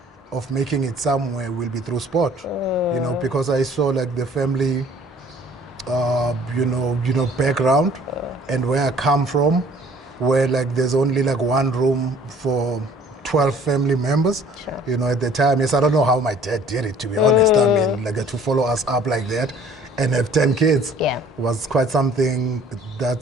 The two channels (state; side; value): normal; both; correlation 0.54